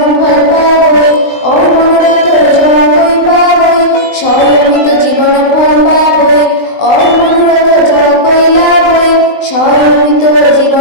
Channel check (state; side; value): late; right; 20 ms